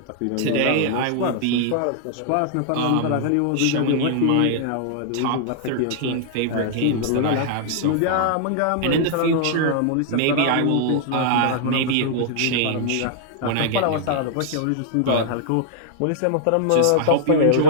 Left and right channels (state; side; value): different; both; correlation -0.01